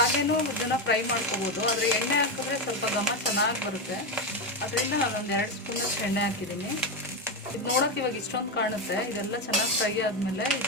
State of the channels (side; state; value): both; normal; correlation 0.11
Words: ಇದನ್ನು ಫ್ರೈ ಮಾಡ್ಕೋಬೋದು, ಆದರೆ ಎಣ್ಣೆ ಹಾಕಿದ್ರೆ ಸ್ವಲ್ಪ ಘಮ ಚೆನ್ನಾಗಿ ಬರುತ್ತೆ. ಅದರಿಂದ ನಾನೊಂದು 2 ಸ್ಪೂನಷ್ಟು ಎಣ್ಣೆ ಹಾಕಿದ್ದೀನಿ. ಇದು ನೋಡೋಕೆ ಇವಾಗ ಇಷ್ಟೊಂದು ಕಾಣುತ್ತೆ. ಇದೆಲ್ಲ ಚೆನ್ನಾಗಿ ಫ್ರೈ ಆದಮೇಲೆ